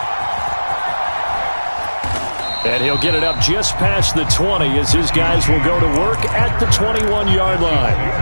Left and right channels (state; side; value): inverted; both; correlation -1.00